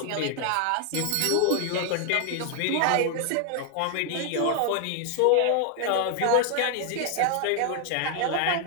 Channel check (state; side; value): different; both; correlation 0.00